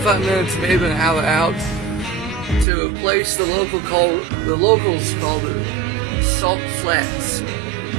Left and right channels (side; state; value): left; drops out; at 2.7 s